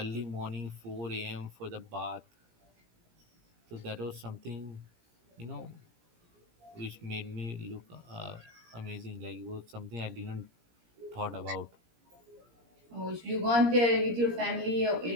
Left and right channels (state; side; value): late; left; 17 ms